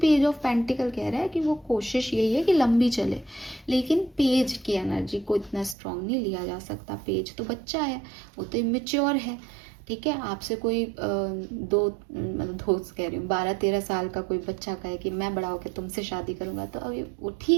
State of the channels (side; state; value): left; drops out; at 5.8 s